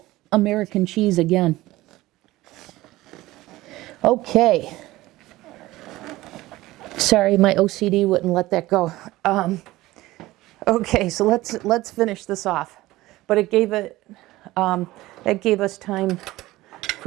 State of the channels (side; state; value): left; quieter; 17.9 dB